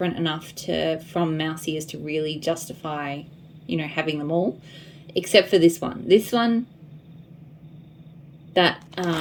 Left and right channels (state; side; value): identical; both; correlation 1.00